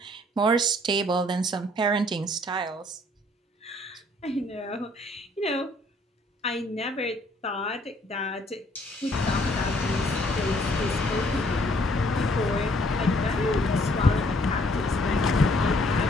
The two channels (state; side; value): normal; both; correlation 0.63